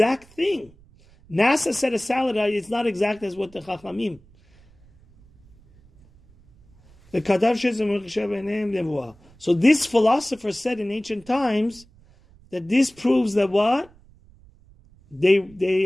thing? NASA said a salad, it's not exact as what the Chachamim. So this philosopher said in ancient times that this proves that what?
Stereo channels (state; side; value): noise; right; rumble, 28 dB below the sound